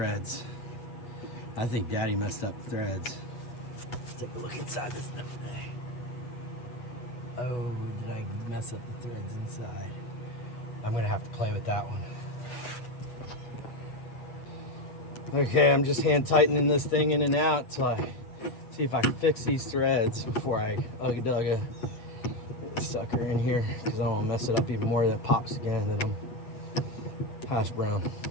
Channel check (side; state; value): right; late; 8.3 ms